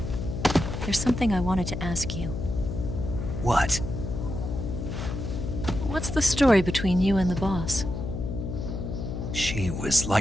There's something I wanted to ask you. What? What's the story between you and the boss? She was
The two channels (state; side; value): noise; left; hum, 5 dB below the sound